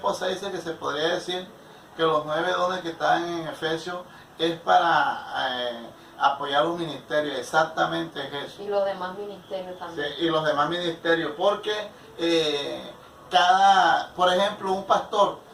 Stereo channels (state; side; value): identical; both; correlation 1.00